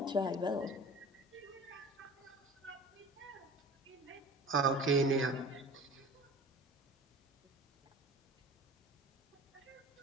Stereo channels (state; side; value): normal; both; correlation 0.41